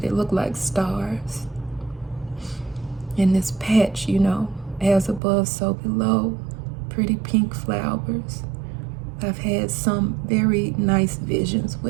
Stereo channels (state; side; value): drops out; left; at 5.2 s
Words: look like stars. In this patch, you know, as above, so below. Pretty pink flowers. I've had some very nice visions